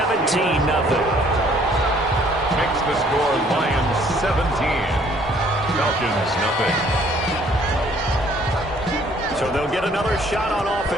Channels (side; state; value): both; normal; correlation 0.60